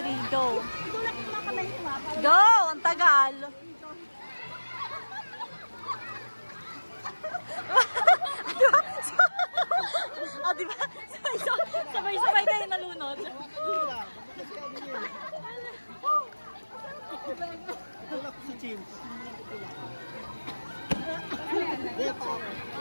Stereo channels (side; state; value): both; inverted; correlation -1.00